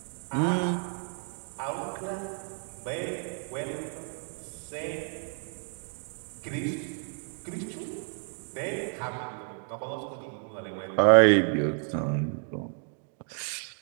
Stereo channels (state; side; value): silent; left; 57 dB below the other